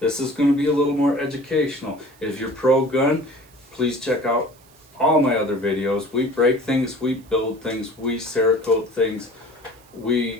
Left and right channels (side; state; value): right; noise; hiss, 28 dB below the sound